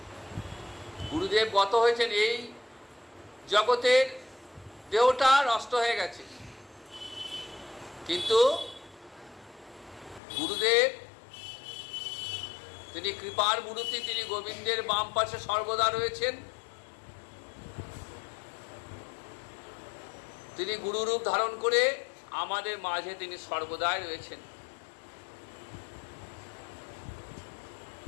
গুরুদেব গত হয়েছেন, এই জগতের দেহটা নষ্ট হয়ে গেছে, কিন্তু গুরুদেব তিনি কৃপার মূর্তি, তিনি গোবিন্দের বাম পাশে সর্বদা রয়েছেন। তিনি গুরুরূপ ধারণ করে আমাদের মাঝে তিনি সর্বদাই রয়েছেন।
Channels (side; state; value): right; drops out; at 10.2 s